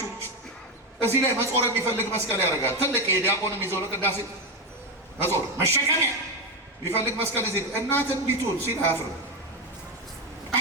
እዚህ ላይ መጾር የሚፈልግ መስቀል ያደርጋል። ትልቅ የዲያቆንም ይዘው ለቅዳሴ መጾር መሸከሚያ የሚፈልግ መስቀል እዚህ እናት እንዲቱን ሲል አያፍርም።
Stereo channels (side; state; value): both; normal; correlation 0.10